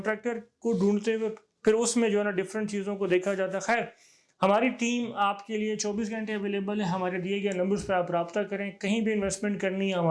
کو ڈھونڈتے ہوئے پھر اس میں جو ہے نا ڈفرینٹ چیزوں کو دیکھا جاتا ہے. خیر, ہماری ٹیم آپ کے لیے 24 گھنٹے اویلیبل ہے. ہمارے دیے گئے نمبرز پہ آپ رابطہ کریں. کہیں بھی انویسٹمنٹ کرنی ہے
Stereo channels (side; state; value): both; identical; correlation 1.00